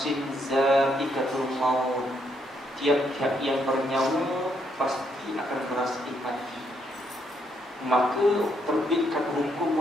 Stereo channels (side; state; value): both; normal; correlation 0.75